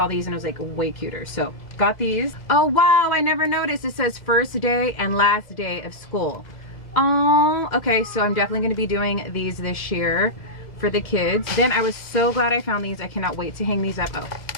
these and I was like, way cuter. So got these. Oh wow, I never noticed. It says first day and last day of school. Oh, okay, so I'm definitely gonna be doing these this year for the kids. Then I was so glad I found these. I cannot wait to hang these up. Oh,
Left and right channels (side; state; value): right; late; 1.9 ms